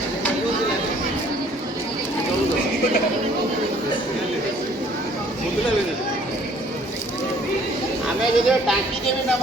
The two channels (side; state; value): both; normal; correlation 0.58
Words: ଆମେ ଯଦି ଟାଙ୍କି କେବେ